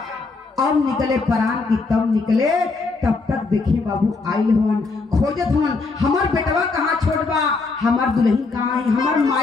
अब निकले परान की तब निकले तब तक देखे बाबू आइल होन खोजत होन हमार बेटवा कहाँ छोड़ बा हमार दुल्हन कहाँ है हमार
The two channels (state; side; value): quieter; right; 4.0 dB